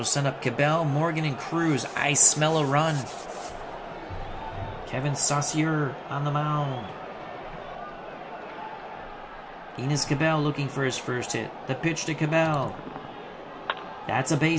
send up Cabell, Morgan, and Cruz. I smell a run. Kevin Saucier on the mound. Enos Cabell looking for his first hit. The pitch to Cabell. That's a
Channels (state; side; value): identical; both; correlation 1.00